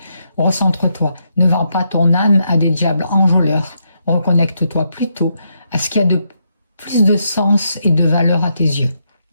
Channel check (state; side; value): inverted; both; correlation -0.79